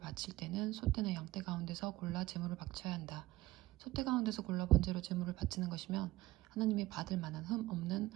때는 소떼나 양떼 가운데서 골라 제물을 바쳐야 한다. 소떼 가운데서 골라 번제로 제물을 바치는 것이면 하나님이 받을 만한 흠 없는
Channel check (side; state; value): left; quieter; 17.6 dB